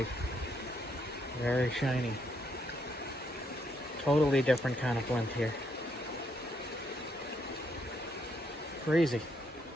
Very shiny. Totally different kind of flint here. Crazy.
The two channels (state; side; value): normal; both; correlation 0.75